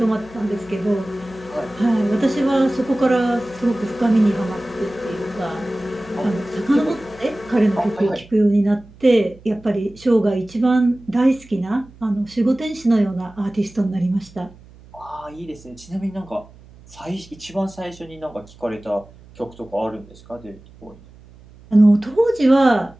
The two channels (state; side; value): noise; right; hum, 23 dB below the sound